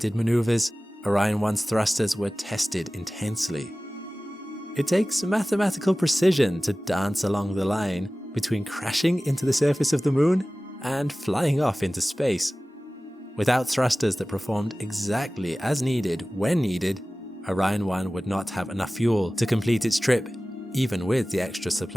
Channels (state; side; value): normal; both; correlation 0.97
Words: maneuvers, Orion 1's thrusters were tested intensely. It takes mathematical precision to dance along the line between crashing into the surface of the moon and flying off into space. Without thrusters that performed exactly as needed when needed, Orion 1 would not have enough fuel to complete its trip, even with the extra